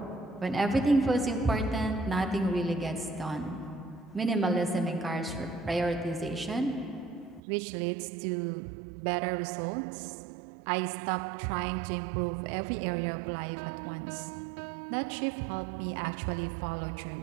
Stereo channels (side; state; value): left; drops out; at 7.4 s